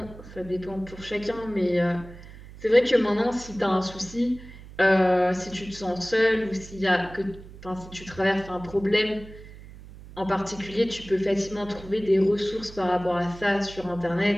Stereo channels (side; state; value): right; noise; hum, 17 dB below the sound